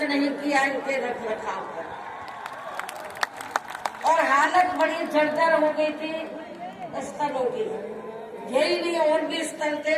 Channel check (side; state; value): both; identical; correlation 1.00